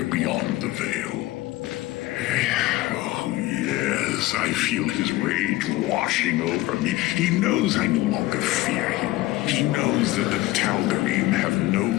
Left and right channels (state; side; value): quieter; right; 17.9 dB